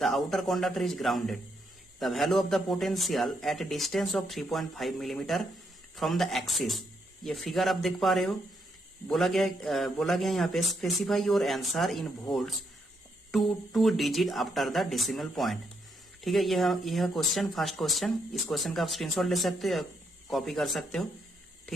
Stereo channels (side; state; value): both; normal; correlation 0.77